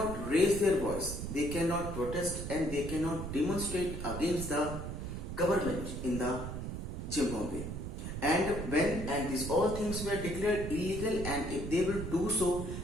raise their voice, they cannot protest and they cannot demonstrate against the government in the Zimbabwe. And these all things were declared illegal, and if they will do so,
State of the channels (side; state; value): right; noise; rumble, 6 dB below the sound